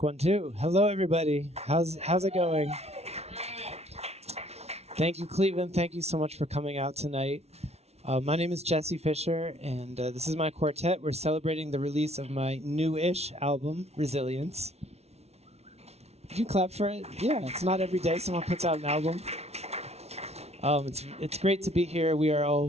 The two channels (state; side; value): late; left; 0.31 ms